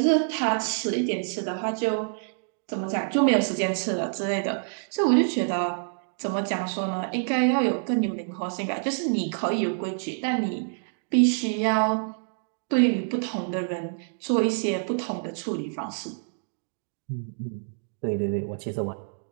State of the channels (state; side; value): silent; left; digital silence